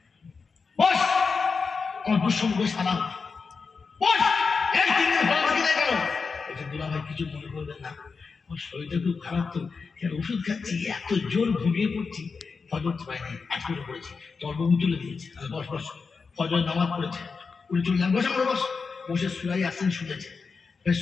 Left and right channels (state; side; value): quieter; right; 4.9 dB